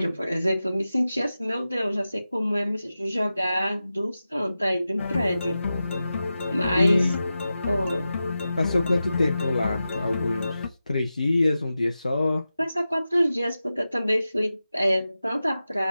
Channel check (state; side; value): inverted; both; correlation -0.93